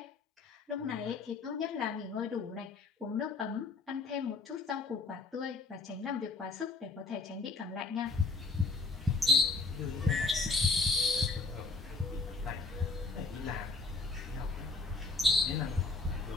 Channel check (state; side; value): quieter; right; 3.8 dB